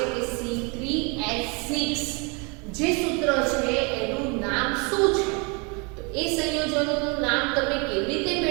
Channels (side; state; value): left; quieter; 31.9 dB